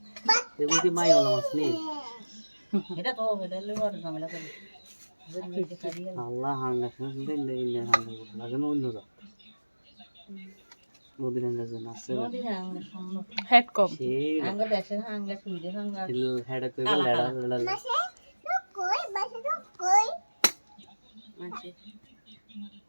এগুলো কি মাইওয়ালা মাছ নেই এটা তো এটা লেবার ঝামেলা করে আল্লাহ হাঙ্গা শুনলে ইন্ডিয়া হাঙ্গা করতে লাগে না অন্য জাত নদীর হাঙ্গা যে মাছ হেড কম সেই আঙ্গা দেশে আঙ্গা সুইডে আঙ্গা হেডে কই লেড়া লেড়া আছে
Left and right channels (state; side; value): inverted; both; correlation -1.00